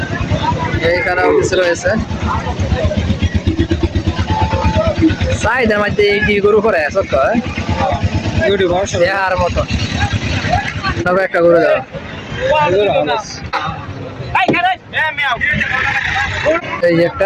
এইখানে অফিস রয়েছে, চাহিদার মধ্যে এইটি গরু করে সত্য দেখার মতো। তবে একটা গরু দেওয়া এই যে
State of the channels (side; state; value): both; identical; correlation 1.00